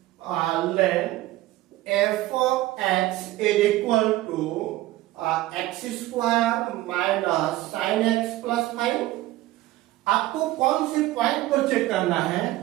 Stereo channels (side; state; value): left; quieter; 16.6 dB